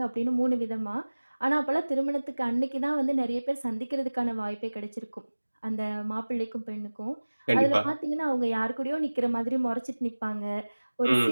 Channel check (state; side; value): inverted; both; correlation -1.00